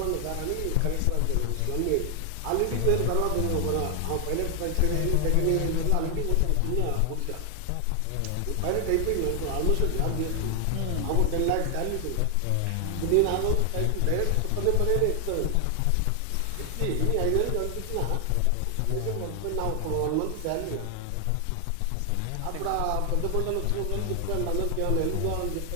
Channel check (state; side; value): different; both; correlation 0.00